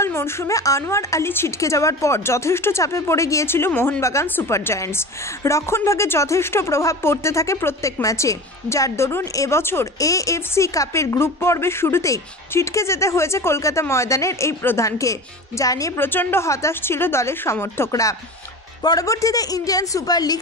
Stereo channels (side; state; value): both; normal; correlation 0.32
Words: মরশুমে আনোয়ার আলী ছিটকে যাওয়ার পর যথেষ্ট চাপে পড়ে গিয়েছিল মোহনবাগান সুপার জায়ান্টস। রক্ষণভাগে যথেষ্ট প্রভাব পড়তে থাকে প্রত্যেক ম্যাচে, যার দরুন এবছর এএফসি কাপের গ্রুপ পর্বের শুরুতেই ছিটকে যেতে হয়েছে কলকাতা ময়দানের এই প্রধানকে, যা নিয়ে প্রচণ্ড হতাশ ছিল দলের সমর্থকরা। পরবর্তীতে ইন্ডিয়ান সুপার লিগ